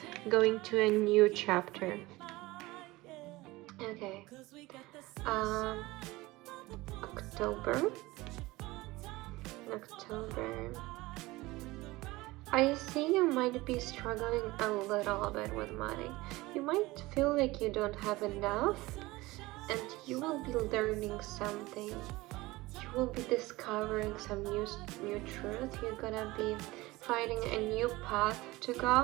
going to a new chapter. Okay. October. I see you might be struggling a little bit with money. You might feel like you don't have enough, and you will be learning something. You will be discovering some new truth. You're gonna be finding a new path to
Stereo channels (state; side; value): quieter; left; 20.3 dB